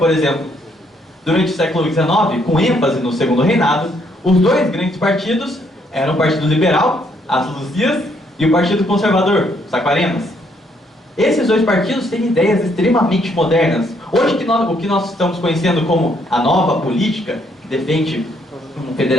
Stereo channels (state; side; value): normal; both; correlation 0.70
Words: exemplo. Durante o século XIX, com ênfase no Segundo Reinado, os dois grandes partidos eram o Partido Liberal, as Luzias, e o Partido Conservador, os Aquarenas. Esses dois partidos têm ideias extremamente modernas. Hoje, o que nós estamos conhecendo como a nova política, que defende um